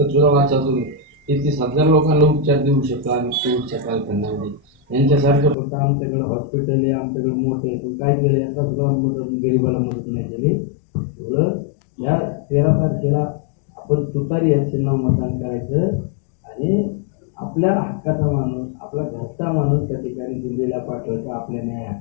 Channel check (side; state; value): right; drops out; at 5.6 s